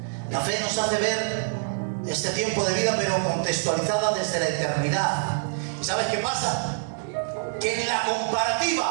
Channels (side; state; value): left; silent; 60 dB below the other